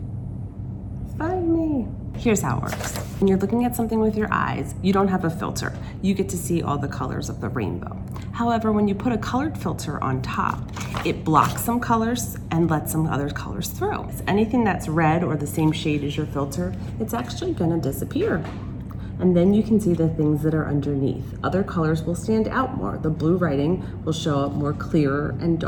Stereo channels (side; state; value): both; identical; correlation 1.00